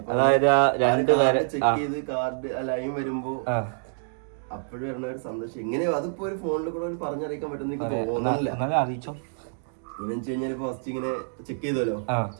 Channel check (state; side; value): silent; left; digital silence